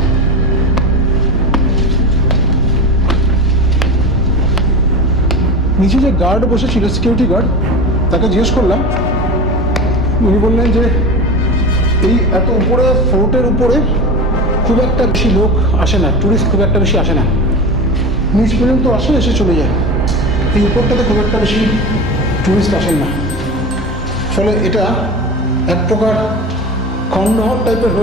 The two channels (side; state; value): both; normal; correlation 0.28